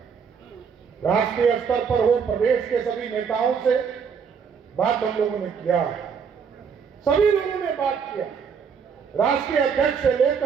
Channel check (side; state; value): left; quieter; 6.4 dB